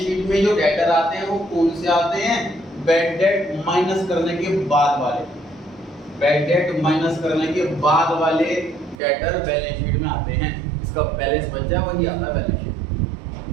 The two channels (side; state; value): left; drops out; at 9.0 s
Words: में जो डेटर आते हैं वो कौन से आते हैं? बैड डेट माइनस करने के बाद वाले, बैड डेट माइनस करने के बाद वाले डेटर बैलेंस शीट में आते हैं। इसका बैलेंस बचा वही आता है बैलेंस शीट,